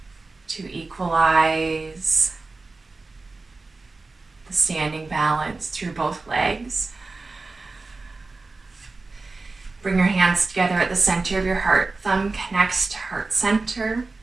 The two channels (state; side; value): quieter; left; 3.6 dB